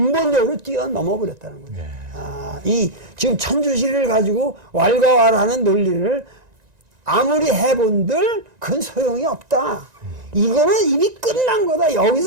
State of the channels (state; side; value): late; left; 1.9 ms